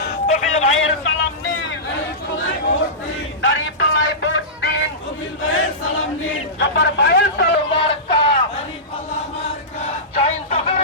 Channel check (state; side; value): normal; both; correlation -0.17